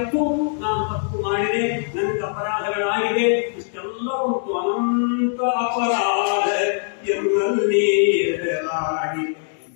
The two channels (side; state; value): right; silent; digital silence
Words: ನಾನು ತಪ್ಪು ಮಾಡಿದೆ, ನನಗೆ ಅಪರಾಧಗಳಾಗಿದೆ, ಇಷ್ಟೆಲ್ಲ ಉಂಟು. ಅನಂತ ಅಪರಾಧ ಎನ್ನಲ್ಲಿ ಎದುರಾಗಿ